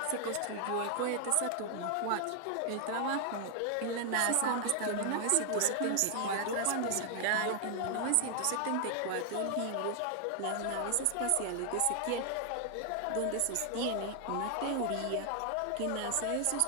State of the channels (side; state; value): both; different; correlation 0.00